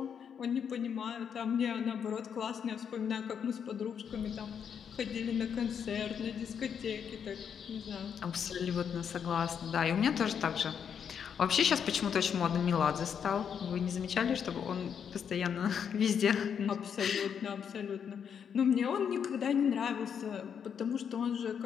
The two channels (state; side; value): quieter; right; 7.6 dB